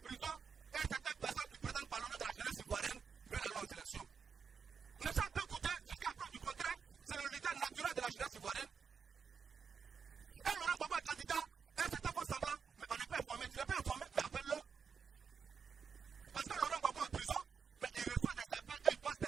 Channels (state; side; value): quieter; left; 6.1 dB